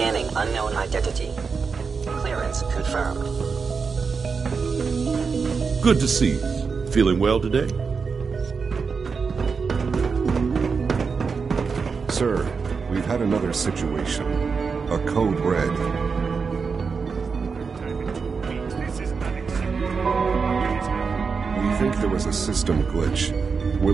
unknown identity. Clearance confirmed. Good to see you. Feeling well today? Sir, we've had another situation. A code red. We think there was a system glitch. We're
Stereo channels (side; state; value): left; quieter; 5.3 dB